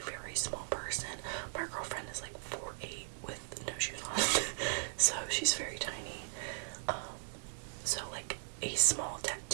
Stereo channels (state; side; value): silent; left; digital silence